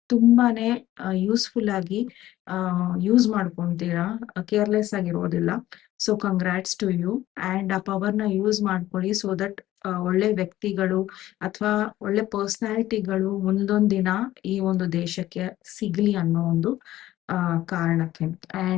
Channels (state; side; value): quieter; right; 14.6 dB